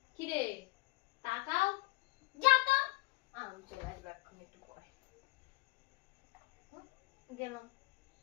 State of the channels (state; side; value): quieter; right; 24.1 dB